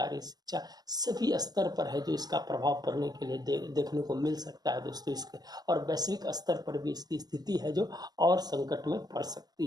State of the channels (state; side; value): late; left; 0.19 ms